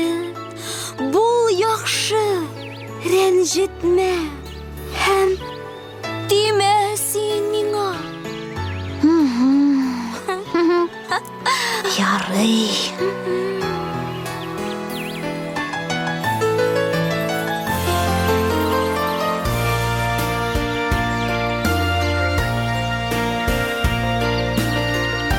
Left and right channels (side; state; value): both; identical; correlation 1.00